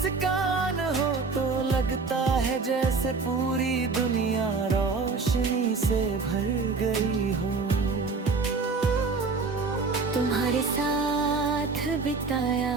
हो तो लगता है जैसे पूरी दुनिया रोशनी से भर गई हो। तुम्हारे साथ बिताया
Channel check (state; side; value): quieter; left; 4.4 dB